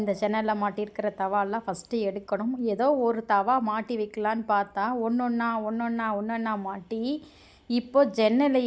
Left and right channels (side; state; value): both; identical; correlation 1.00